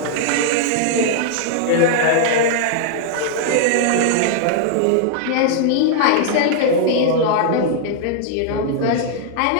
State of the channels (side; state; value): both; different; correlation 0.00